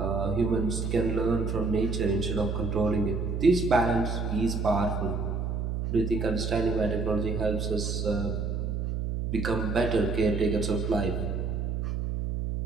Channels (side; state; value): right; noise; hum, 1 dB below the sound